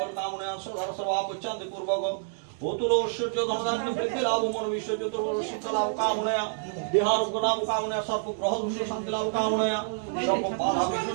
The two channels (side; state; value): left; silent; 59 dB below the other